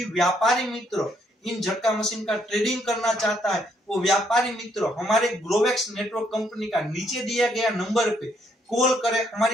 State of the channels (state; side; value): normal; both; correlation 0.72